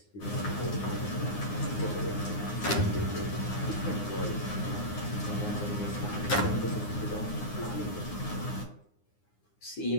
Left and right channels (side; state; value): right; late; 9.7 ms